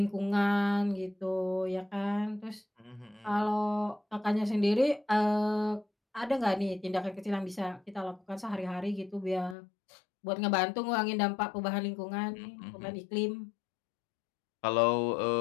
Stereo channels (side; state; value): right; drops out; at 9.6 s